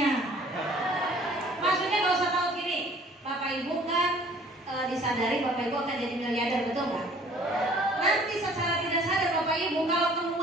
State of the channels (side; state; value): both; normal; correlation 0.53